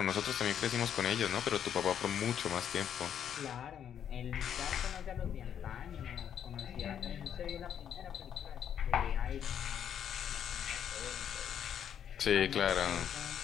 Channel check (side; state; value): right; quieter; 9.0 dB